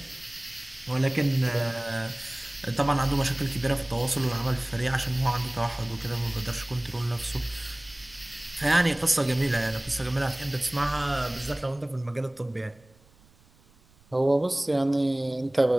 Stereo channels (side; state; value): right; noise; rumble, 29 dB below the sound